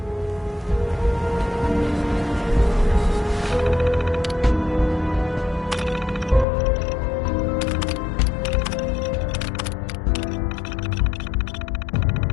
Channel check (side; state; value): right; drops out; at 6.5 s